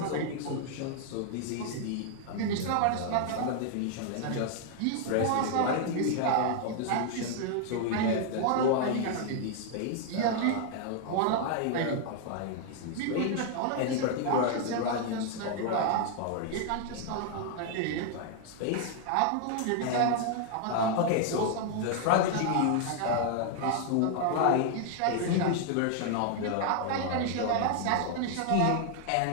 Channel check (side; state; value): both; different; correlation 0.00